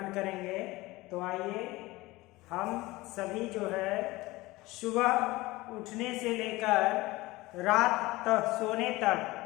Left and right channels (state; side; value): quieter; right; 20.1 dB